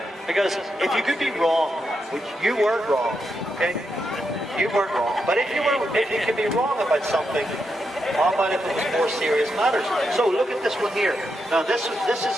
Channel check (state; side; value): normal; both; correlation 0.84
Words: Because if you could be wrong, which you weren't wrong, okay? You weren't wrong. But if you could be wrong about something, how about if it was more serious matters? So look at this one here. Now this